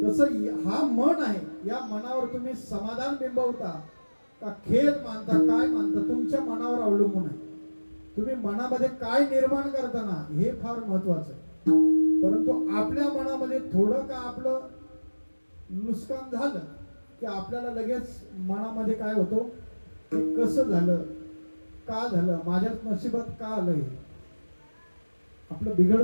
हा मन आहे, या मनावर तुम्ही समाधान बिंबवता का खेद मानता, काय मानता, तुमच्या मनावर अवलंबून आहे. तुम्ही मनामध्ये काय निर्माण करताना हे फार महत्वाचं आहे. परंतु आपल्या मनामध्ये थोडं का आपलं नुकसान झालं की आपल्याला लगेच मनामध्ये काय होतं, की कसं झालं, का झालं, माझ्या नशिबात का आलं, हे आपलं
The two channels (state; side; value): inverted; both; correlation -1.00